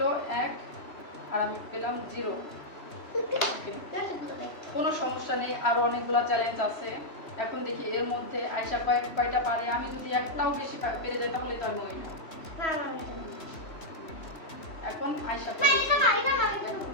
1 আর আমি পেলাম 0। কোনো সমস্যা নেই, আরো অনেকগুলো চ্যালেঞ্জ আছে। এখন দেখি এর মধ্যে আয়শা কয়টা পারে। আমি যদি একটাও বেশি পেরে যাই তাহলে তো আমি উইনার। এখন আয়শা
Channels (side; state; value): right; late; 2.9 ms